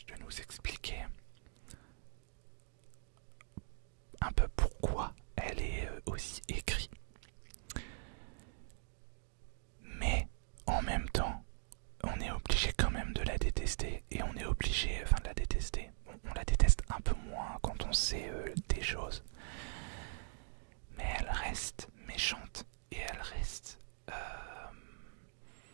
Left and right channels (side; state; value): left; silent; digital silence